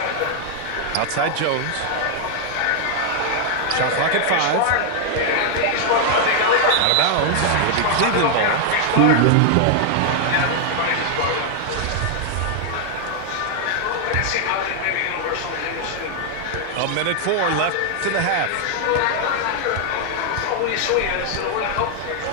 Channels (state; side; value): different; both; correlation 0.00